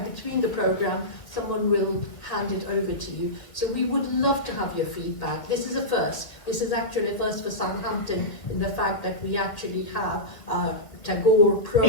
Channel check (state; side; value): late; right; 2.1 ms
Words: between the program, someone will hand it over to you. So we would love to have your feedback. This is a first. This is actually a first for Southampton in the fact that we actually have a Tagore